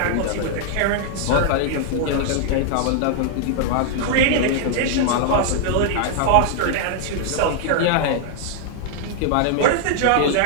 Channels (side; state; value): both; different; correlation 0.00